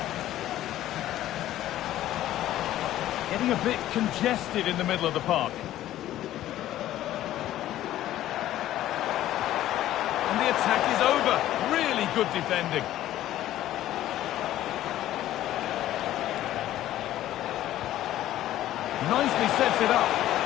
Getting a bit congested in the middle of the park. And the attack is over. Really good defending. Nicely sets it up.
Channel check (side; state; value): right; quieter; 13.5 dB